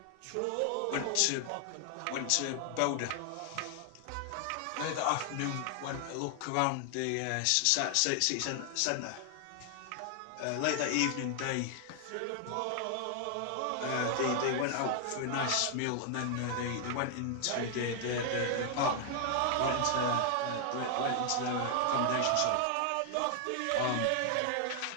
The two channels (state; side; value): different; both; correlation 0.00